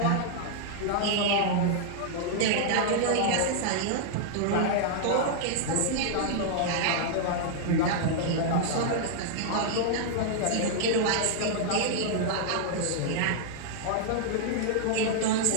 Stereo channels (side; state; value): both; different; correlation -0.01